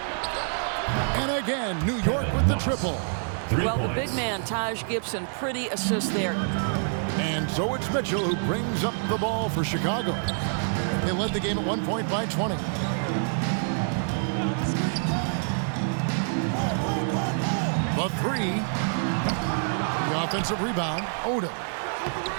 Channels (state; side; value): silent; left; digital silence